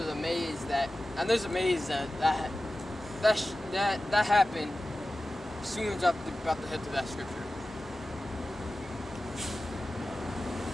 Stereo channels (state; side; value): normal; both; correlation 0.95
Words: amazed that happened as soon as I'm about to head to that scripture.